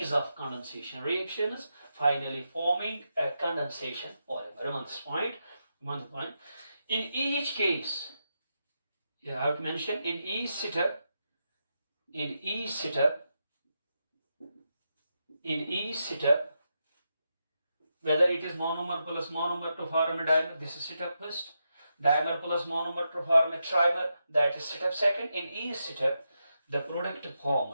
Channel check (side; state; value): both; inverted; correlation -0.86